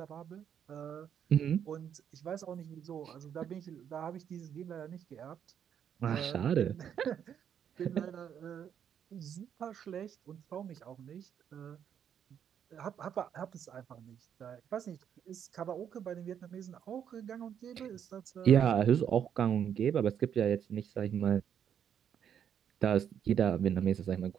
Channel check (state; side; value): quieter; left; 8.7 dB